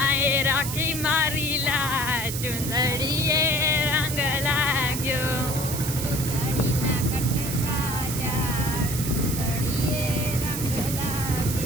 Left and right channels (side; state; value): right; noise; hiss, 5 dB below the sound